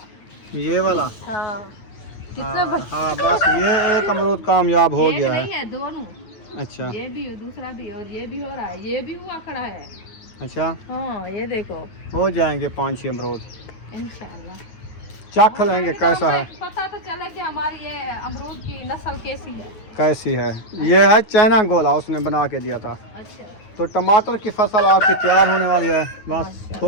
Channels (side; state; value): right; late; 9.4 ms